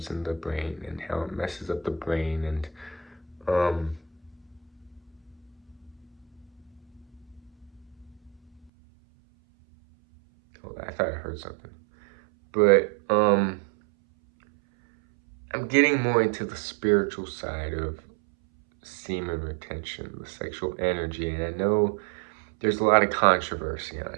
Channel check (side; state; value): left; drops out; at 8.7 s